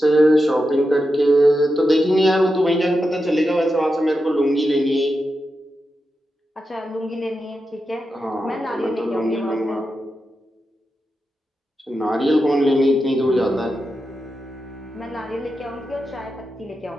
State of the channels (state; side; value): normal; both; correlation 0.89